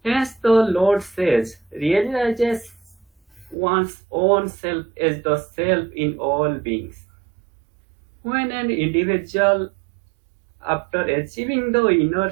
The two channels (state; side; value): drops out; left; at 3.6 s